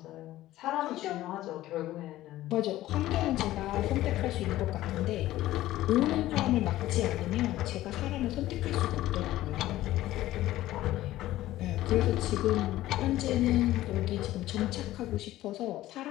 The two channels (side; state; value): right; quieter; 15.3 dB